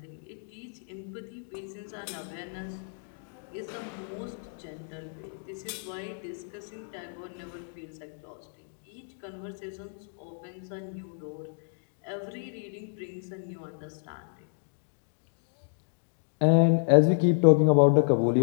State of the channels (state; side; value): silent; right; 57 dB below the other